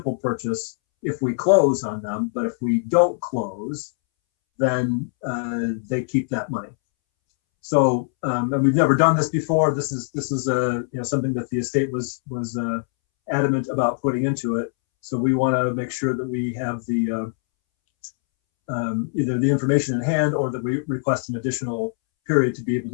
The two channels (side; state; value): right; silent; 64 dB below the other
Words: purchase if we close on them. But if we don't close, then they keep that money. So, and we've never done this before. This is something that the estate was adamant about putting into it. So we want to make sure that we have the either the information in hand or that we request an additional period to be able